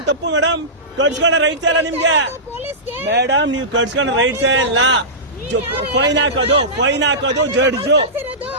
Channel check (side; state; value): both; normal; correlation -0.17